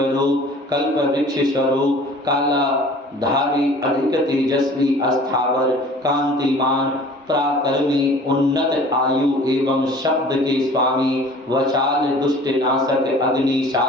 रूप कल्प वृक्ष स्वरूप काला धारी अधिक तेजस्वी अस्थावर कांतिमान पराक्रमी उन्नत आयु एवं शब्द के स्वामी वचाल दुष्ट नाशक अग्नि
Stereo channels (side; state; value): both; normal; correlation 0.47